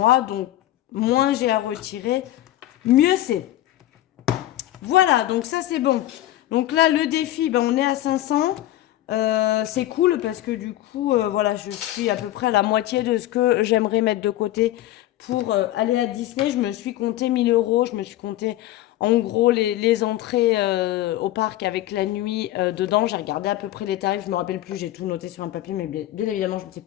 Donc moins j'ai à retirer, mieux c'est. Voilà, donc ça c'est bon. Donc là le défi, on est à 500. C'est cool parce que du coup, voilà, je suis à peu près à la moitié de ce que j'aimerais mettre de côté pour aller à Disney. Je me suis compté 1000 euros. Je me suis compté en gros les entrées au parc avec la nuit dedans. J'ai regardé à peu près les tarifs. Je me rappelle plus. J'ai tout noté sur un papier, mais bien évidemment, je ne sais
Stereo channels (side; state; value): right; quieter; 14.5 dB